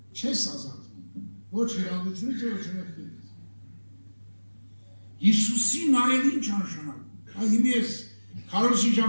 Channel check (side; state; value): both; inverted; correlation -1.00